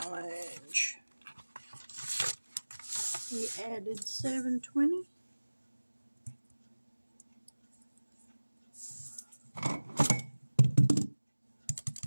We added $7.20.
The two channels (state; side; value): inverted; both; correlation -1.00